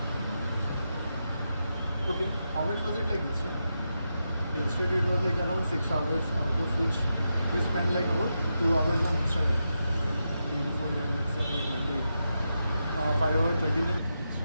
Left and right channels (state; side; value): inverted; both; correlation -0.87